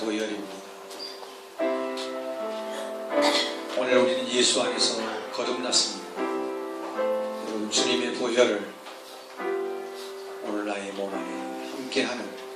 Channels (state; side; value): identical; both; correlation 1.00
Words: 오늘 우리는 예수 안에서 거듭났습니다. 여러분 주님의 보혈을 오늘 나의 몸 안에 함께하는